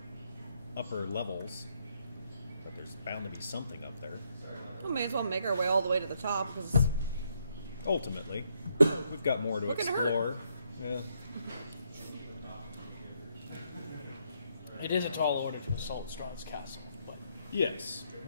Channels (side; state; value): both; inverted; correlation -0.74